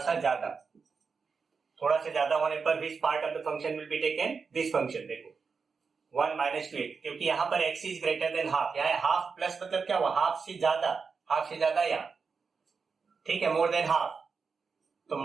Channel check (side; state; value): left; quieter; 5.2 dB